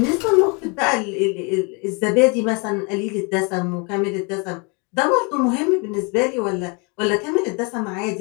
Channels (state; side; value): quieter; right; 32.1 dB